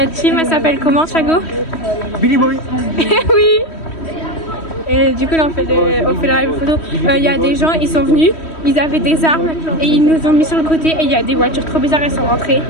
team, elle s'appelle comment, Chago? Billy Boy. Oui. Et du coup, là, on fait le rallye photo. Il y a des gens, ils sont venus, ils avaient des armes et ils nous ont mis sur le côté. Et il y a des voitures trop bizarres, elles sont rentrées.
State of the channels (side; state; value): right; late; 3.1 ms